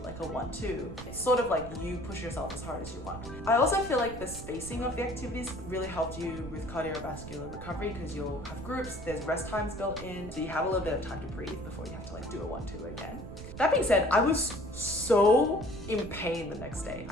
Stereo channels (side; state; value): right; noise; rumble, 11 dB below the sound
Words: like a 1, 2. It's sort of like you push yourself as hard as you want. I also feel like the spacing of the activities really helped you with cardiovascular recovery because you'll have groups, there's rest times built in, so you have a little bit of time to breathe before you have to like do a 1, 2 again. That being said, I was so in pain the next day.